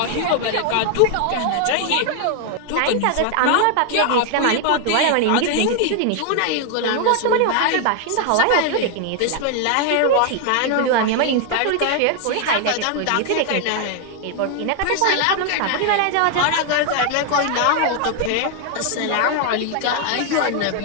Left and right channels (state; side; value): different; both; correlation 0.00